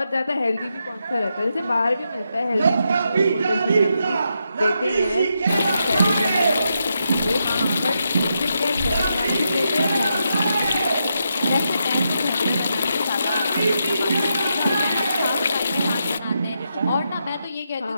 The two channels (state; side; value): inverted; both; correlation -0.83